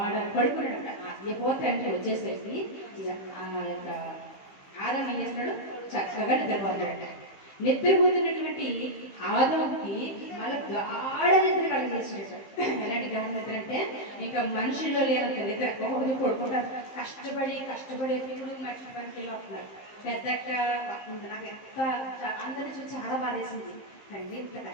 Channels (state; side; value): late; right; 15 ms